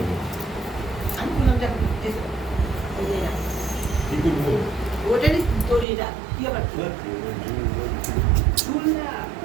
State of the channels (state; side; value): drops out; left; at 5.9 s